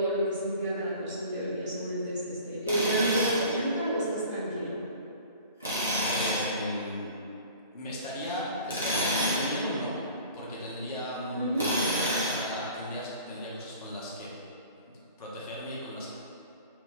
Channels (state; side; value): inverted; both; correlation -0.44